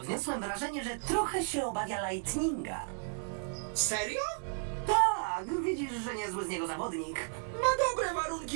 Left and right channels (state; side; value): silent; left; 55 dB below the other